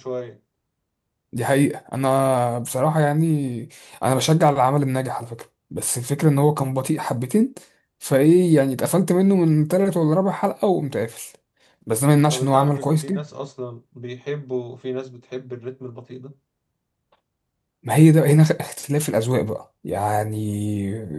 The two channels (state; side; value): identical; both; correlation 1.00